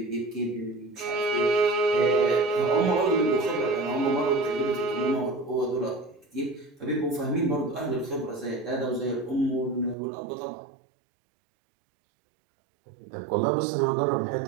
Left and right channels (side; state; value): left; drops out; at 10.0 s